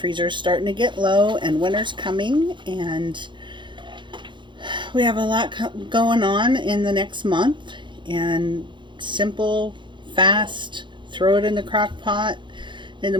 is starting to get low and winter's coming, and we have a lot going on in the next month. And simple, fast, throw it in the crock pot in the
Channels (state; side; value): late; left; 0.23 ms